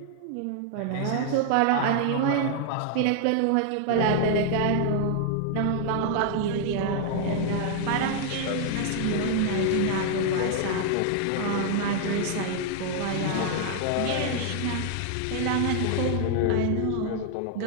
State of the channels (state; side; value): different; both; correlation 0.00